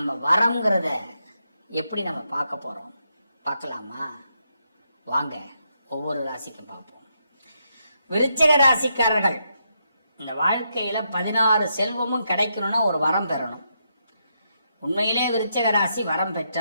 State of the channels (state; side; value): inverted; both; correlation -0.81